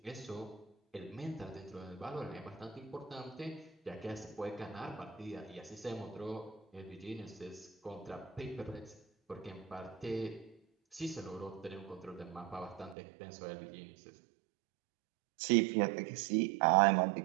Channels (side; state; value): left; drops out; at 13.0 s